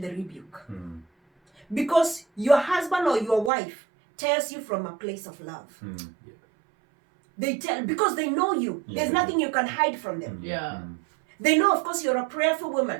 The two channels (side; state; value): left; drops out; at 3.5 s